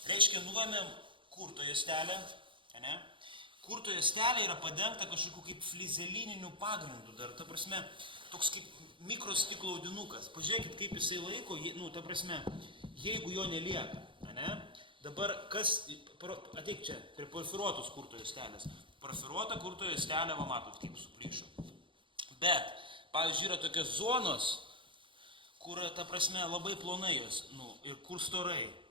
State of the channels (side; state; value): left; late; 0.24 ms